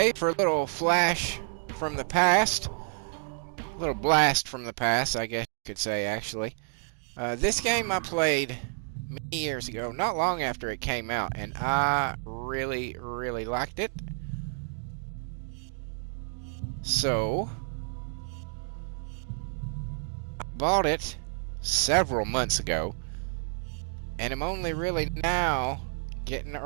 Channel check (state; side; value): silent; left; 58 dB below the other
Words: for a little flash from the past. A little blast from the past, I guess you could say, actually. This game I played many years ago, not long after it came out, and I really, really liked it. So, I bought it several months ago, and I'm only really now getting